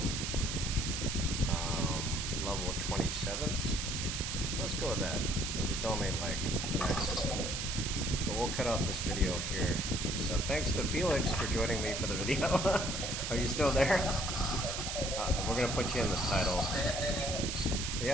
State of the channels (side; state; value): right; noise; hiss, 3 dB below the sound